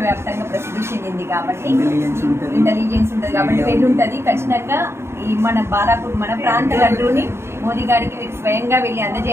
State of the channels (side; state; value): left; late; 0.12 ms